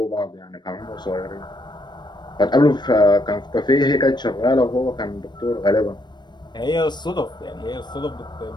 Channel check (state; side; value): late; right; 0.21 ms